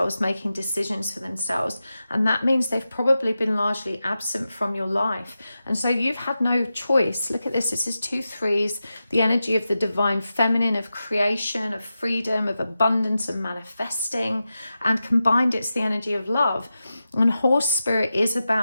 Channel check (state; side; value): inverted; both; correlation -0.92